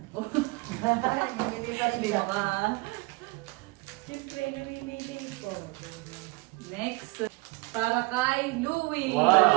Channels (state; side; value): quieter; left; 25.7 dB